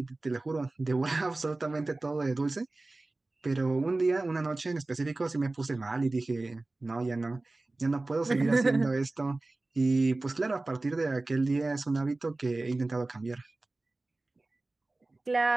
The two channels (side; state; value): left; quieter; 3.1 dB